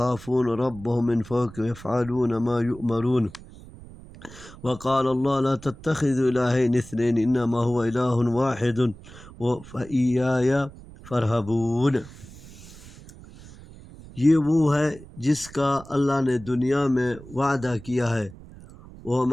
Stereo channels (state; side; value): noise; right; rumble, 18 dB below the sound